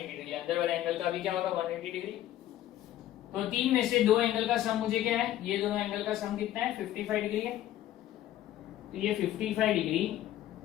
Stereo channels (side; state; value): right; quieter; 13.1 dB